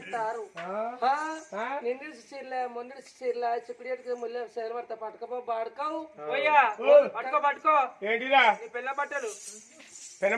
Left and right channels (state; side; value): identical; both; correlation 1.00